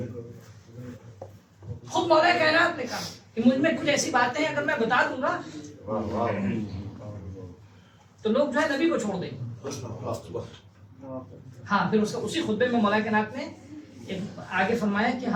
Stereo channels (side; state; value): both; identical; correlation 1.00